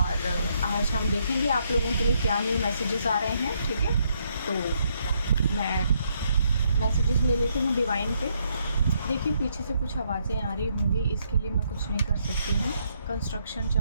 आज हम देखेंगे आप लोगों के लिए क्या न्यू मैसेजेस आ रहे हैं। ठीक है, तो मैं मैसेजेस ले लेती हूँ डिवाइन पे। देखिए पीछे से कुछ आवाज़ें आ रही होंगी, इसके लिए मैं कुछ नहीं कर सकती हूँ। कंस्ट्रक्शन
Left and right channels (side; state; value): both; inverted; correlation -0.74